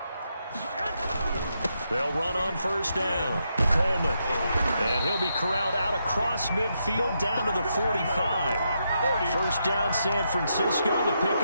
They'll run on first down. Coleman. And he'll be corralled out across midfield down to the 45. First down, San Francisco. The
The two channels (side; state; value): both; inverted; correlation -0.81